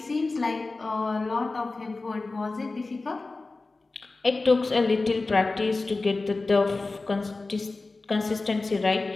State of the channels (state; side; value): quieter; right; 3.5 dB